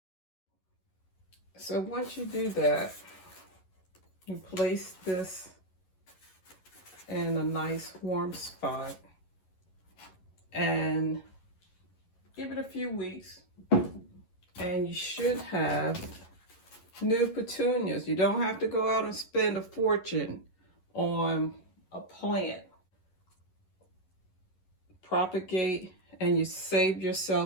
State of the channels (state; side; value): late; right; 11 ms